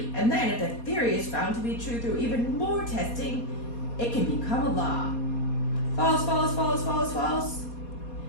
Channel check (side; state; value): right; late; 4.2 ms